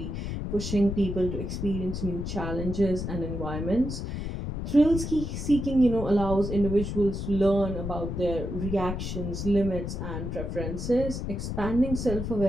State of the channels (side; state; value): left; noise; rumble, 4 dB below the sound